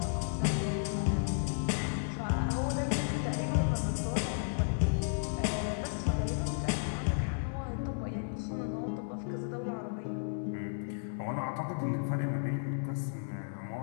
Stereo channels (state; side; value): silent; right; digital silence